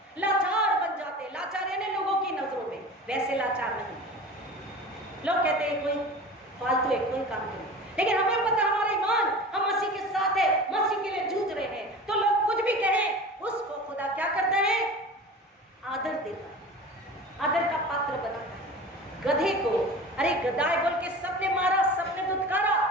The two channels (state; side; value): normal; both; correlation 0.36